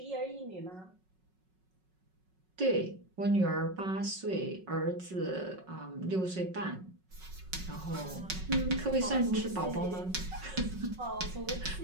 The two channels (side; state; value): left; late; 5.4 ms